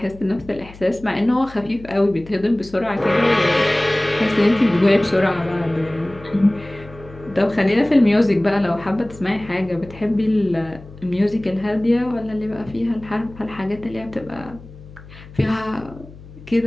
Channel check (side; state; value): left; noise; hum, 19 dB below the sound